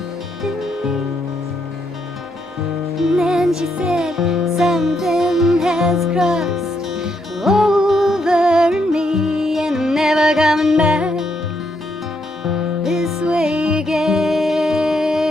And then she said, something has crossed over in me, and I'm never coming back this way again.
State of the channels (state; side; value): normal; both; correlation 0.77